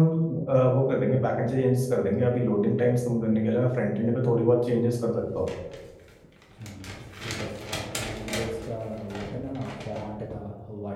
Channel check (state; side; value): identical; both; correlation 1.00